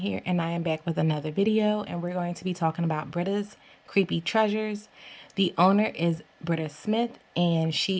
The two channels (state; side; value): identical; both; correlation 1.00